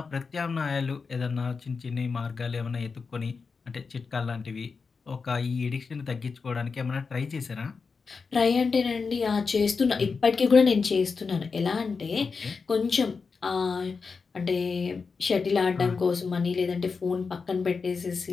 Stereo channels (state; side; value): quieter; right; 4.9 dB